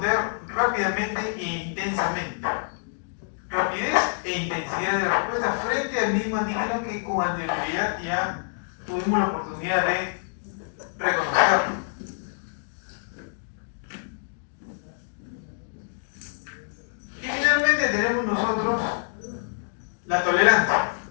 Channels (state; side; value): silent; right; digital silence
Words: rápidamente e intensamente. Rapidez e intensidad de respuesta frente al mismo antígeno que con anterioridad ya tuvimos la oportunidad de reconocerlo. Y finalmente tenemos nosotros la tolerancia.